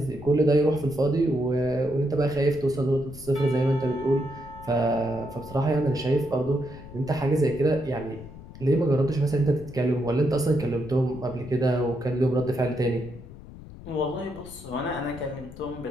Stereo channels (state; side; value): noise; left; rumble, 16 dB below the sound